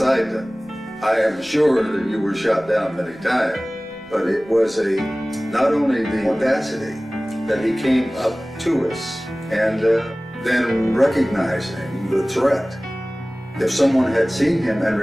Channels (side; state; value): left; noise; rumble, 28 dB below the sound